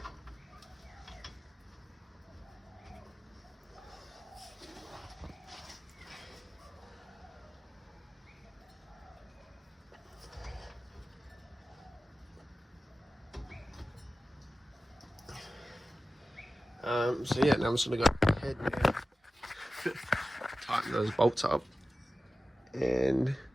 So yeah, now I'm just gonna go ahead and tighten those bolts up, and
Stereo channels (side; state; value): both; normal; correlation 0.95